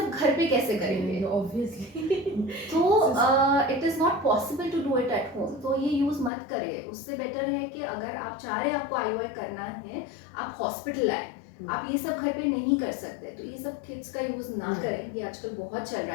घर पे कैसे करेंगे? ऑब्वियसली तो it is not possible to do it at home, तो ये यूज़ मत करें। उससे बेटर है कि अगर आप चाह रहे हैं आपको IUI करना है, आप हॉस्पिटल आए। आप ये सब घर पे नहीं कर सकते, तो ये सब किट्स का यूज़ ना करें, ये आजकल बहुत चल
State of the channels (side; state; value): right; drops out; at 6.3 s